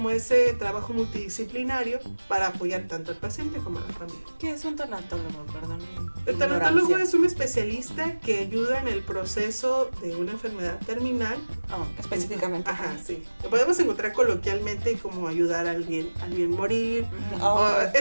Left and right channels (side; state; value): both; inverted; correlation -1.00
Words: ese trabajo multidisciplinario para apoyar tanto al paciente como a la familia. ¿Qué es un tanatólogo? Perdón. El tanatólogo es un especialista que ayuda en el proceso de una enfermedad terminal. Específicamente. Ajá, sí. Lo podemos encontrar coloquialmente como ayudar a alguien morir.